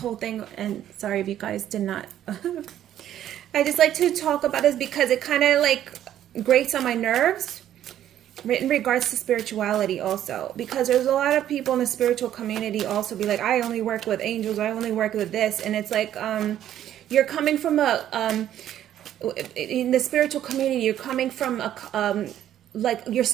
thing, and sorry if you guys did not. I just like to talk about this because it kind of like grates on my nerves in regards to spirituality also, because there's a lot of people in the spiritual community also be like, I only work with angels, I only work with this, and it's like you're coming from a in the spiritual community, you're coming from a like you're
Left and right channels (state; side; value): quieter; left; 11.4 dB